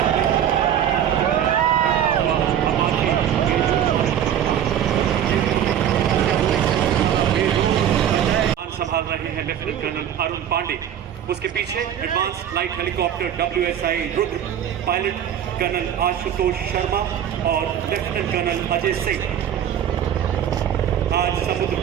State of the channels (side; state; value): left; quieter; 9.9 dB